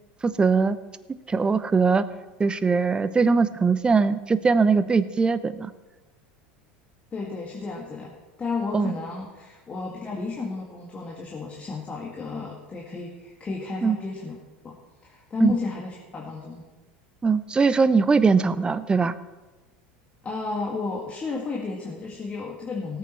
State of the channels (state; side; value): quieter; left; 3.4 dB